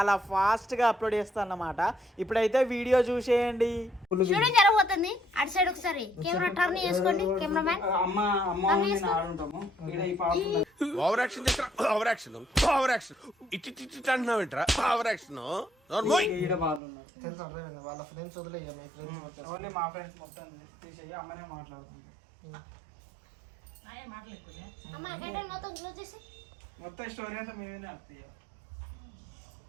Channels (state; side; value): drops out; left; at 16.8 s